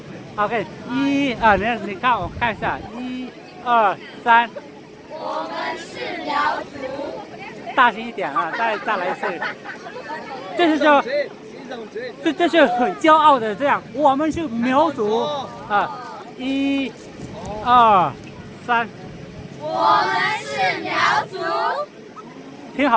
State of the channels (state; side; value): identical; both; correlation 1.00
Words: OK， 你看我看一下，1、2、3。我们是苗族。大声一点啊！再来一次。这是很骄傲的这样，我们是苗族啊！1、2、3。我们是苗族。听